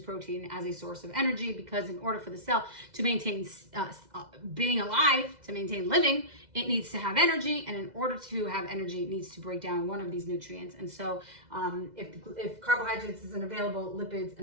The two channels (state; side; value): late; left; 2.0 ms